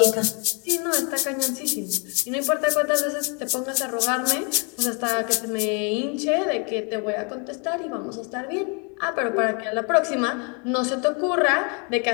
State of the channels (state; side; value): quieter; right; 34.9 dB